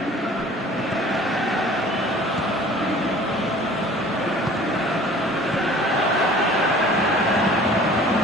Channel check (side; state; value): both; normal; correlation 0.48